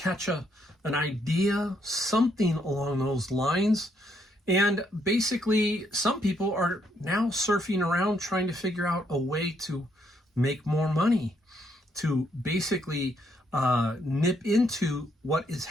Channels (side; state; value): both; normal; correlation 0.73